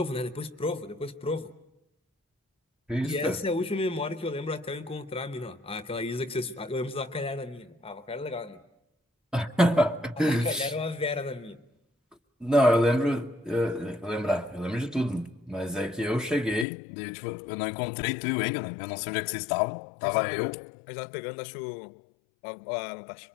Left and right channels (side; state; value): right; drops out; at 16.7 s